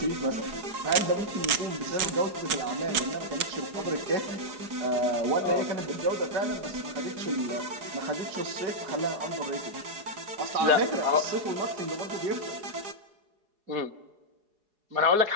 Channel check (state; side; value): late; left; 4.8 ms